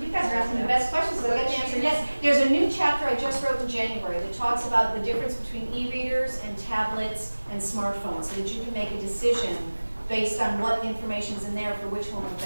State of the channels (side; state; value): both; inverted; correlation -1.00